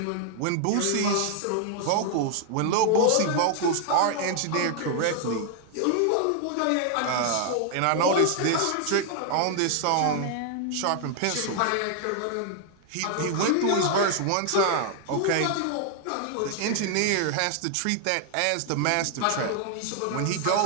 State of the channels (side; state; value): both; different; correlation 0.00